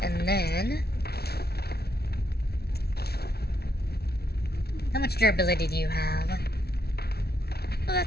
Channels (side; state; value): right; late; 0.46 ms